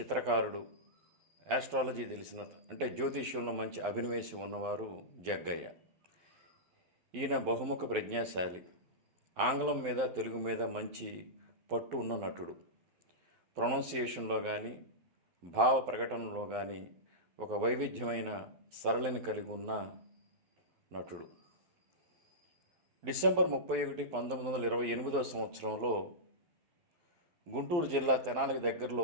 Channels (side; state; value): left; late; 12 ms